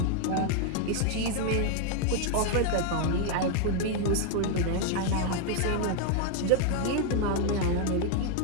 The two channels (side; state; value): both; different; correlation 0.00